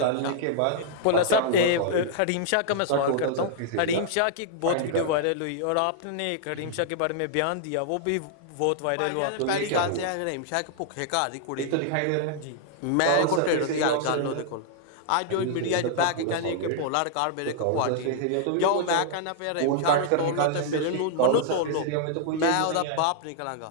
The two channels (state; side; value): different; both; correlation -0.01